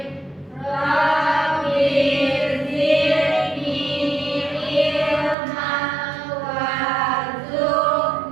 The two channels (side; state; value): left; drops out; at 5.4 s